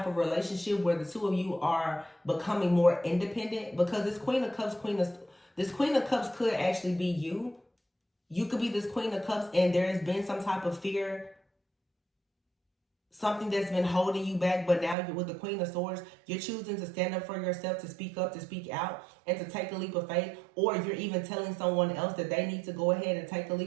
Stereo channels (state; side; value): drops out; left; at 15.0 s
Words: of relationship where the two of you are becoming more independent, because this Queen of Cups could actually be you. You could be this Queen of Cups, and there has been some type of fear, something that's been holding you back, but now you're with the Queen of Swords, you're choosing to stand up for yourself, to speak up, to speak out, and to take a leap of faith. Or you're even telling someone else that they need to go ahead and take a